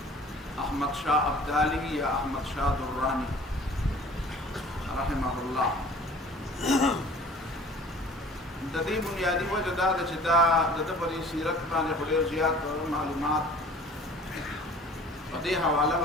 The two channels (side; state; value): both; normal; correlation 0.48